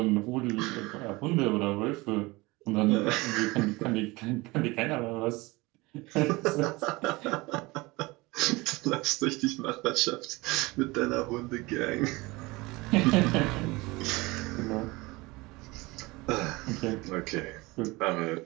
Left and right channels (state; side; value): quieter; left; 22.7 dB